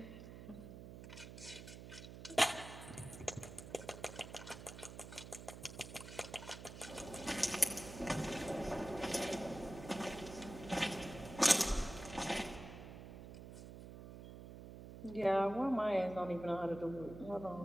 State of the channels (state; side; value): noise; right; hum, 12 dB below the sound